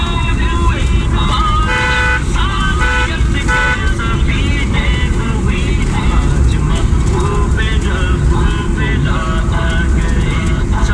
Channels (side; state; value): both; identical; correlation 1.00